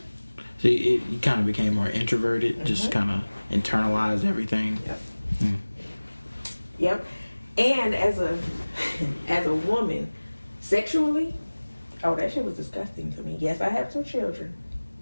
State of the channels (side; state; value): both; inverted; correlation -1.00